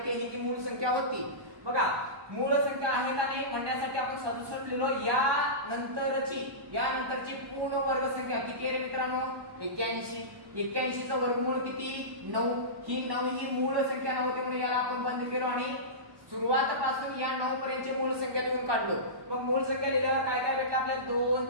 आहे की मूळ संख्या होती. बघा मूळ संख्या आहे का नाही म्हणण्यासाठी आपण 67 लिहिलो. यानंतरची पूर्ण वर्ग संख्या किती आहे रे मित्रांनो 81. 81 चा वर्गमूळ किती 9. ही 9 ही मूळ संख्या नव्हती म्हणून याला आपण बंद केलो आणि सुरुवातीपासून या 9 पर्यंतची मूळ संख्या लिहून काढलो. मग मूळ संख्या लिहिल्यावर काय काय भेटलं आपल्याला 2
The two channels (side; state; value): left; late; 1.2 ms